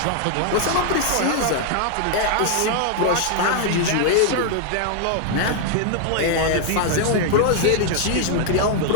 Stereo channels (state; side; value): different; both; correlation 0.00